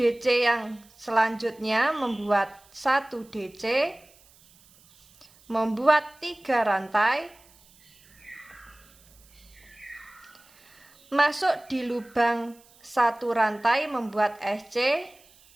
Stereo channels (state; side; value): noise; right; hiss, 28 dB below the sound